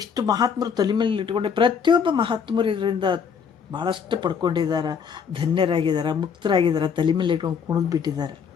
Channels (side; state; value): right; quieter; 6.6 dB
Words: ಮಹಾತ್ಮರು ತಲೆ ಮೇಲೆ ಇಟ್ಕೊಂಡೆ? ಪ್ರತಿಯೊಬ್ಬ ಮಹಾತ್ಮರು ಇದರಿಂದ ಭಾಳಷ್ಟು ಪಡ್ಕೊಂಡಿದ್ದಾರೆ, ಧನ್ಯರಾಗಿದ್ದಾರೆ, ಮುಕ್ತರಾಗಿದ್ದಾರೆ, ತಲೆ ಮೇಲೆ ಇಟ್ಕೊಂಡು ಕುಣಿದು ಬಿಟ್ಟಿದ್ದಾರೆ.